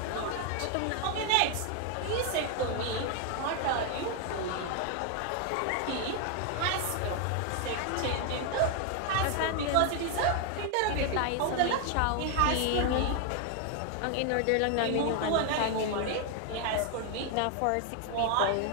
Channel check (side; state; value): both; different; correlation 0.00